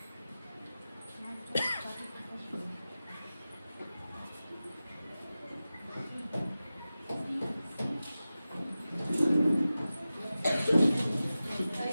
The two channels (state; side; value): inverted; both; correlation -0.95